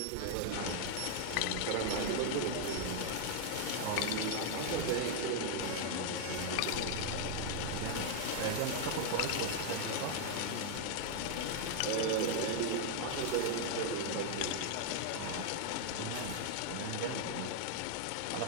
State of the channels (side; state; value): both; different; correlation 0.00